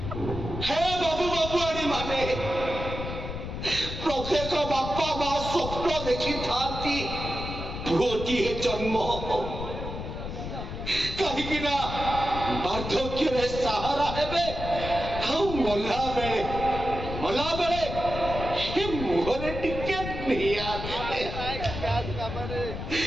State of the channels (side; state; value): left; noise; rumble, 6 dB below the sound